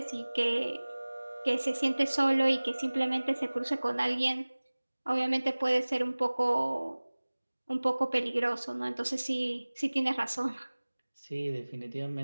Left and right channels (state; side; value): inverted; both; correlation -1.00